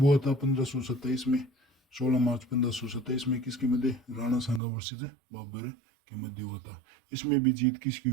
हुआ था? 1527 में। 16 मार्च 1527 में किसके मध्य? राणा सांगा वर्सेज बाबर के मध्य हुआ था। इसमें भी जीत किसकी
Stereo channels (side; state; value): left; drops out; at 4.6 s